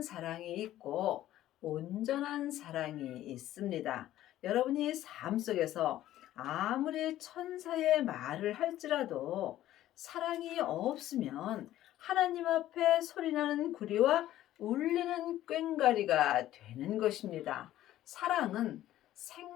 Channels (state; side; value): quieter; right; 13.7 dB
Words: 사랑이 있고 온전한 사랑이 있습니다. 여러분이 삶 속에서 아무리 천사의 말을 할지라도 사랑이 없으면 하나님 앞에 소리나는 구리와 울리는 꽹과리가 되는 것입니다. 사랑은